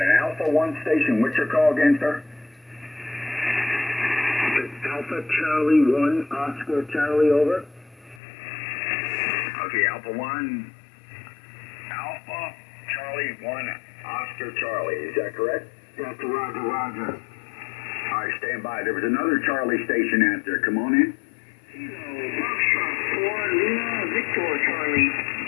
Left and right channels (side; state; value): right; drops out; at 8.2 s